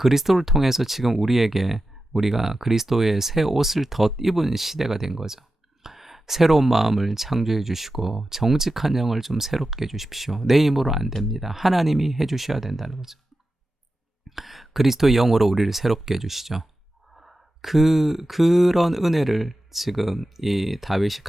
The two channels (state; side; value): normal; both; correlation 0.92